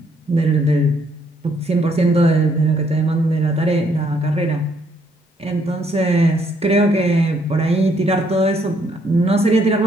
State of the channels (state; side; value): normal; both; correlation 0.69